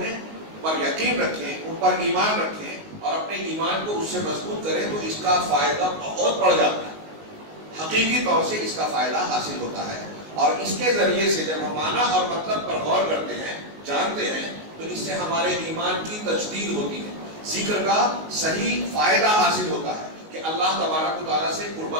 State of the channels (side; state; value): left; late; 19 ms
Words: پر یقین رکھیں، ان پر ایمان رکھیں اور اپنے ایمان کو اس سے مضبوط کریں تو اس کا فائدہ بہت بڑھ جاتا ہے. حقیقی طور سے اس کا فائدہ حاصل ہوتا ہے. اور اس کے ذریعے سے جب ہم معنی اور مطلب پر غور کرتے ہیں، جانتے ہیں، تو اس سے ہمارے ایمان کی تجدید ہوتی ہے، ذکر کا صحیح فائدہ حاصل ہوتا ہے کہ اللہ تبارک و تعالیٰ سے